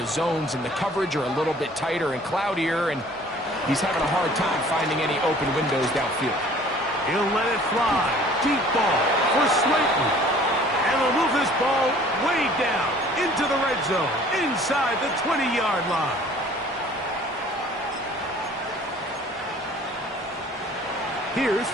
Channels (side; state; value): both; normal; correlation 0.52